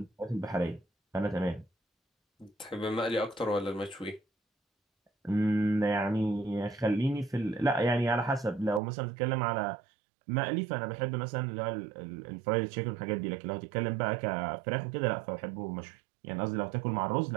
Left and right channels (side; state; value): left; drops out; at 8.8 s